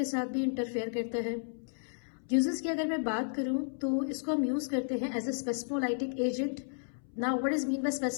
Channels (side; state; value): right; silent; 55 dB below the other